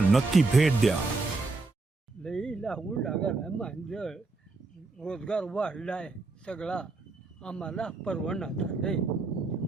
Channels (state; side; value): quieter; left; 3.6 dB